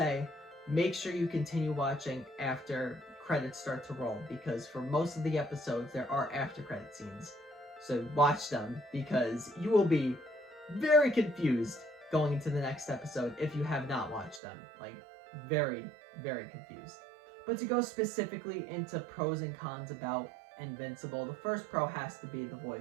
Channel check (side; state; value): left; drops out; at 14.4 s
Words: make sure you continue watching after credits start to roll, because for most of the episodes there are after credit scenes. So watch them, because you will be very confused going into the next episode if you have not watched them. Like, very, very confused. But to go specifically into pros and cons about Invincible, the first pro has to be the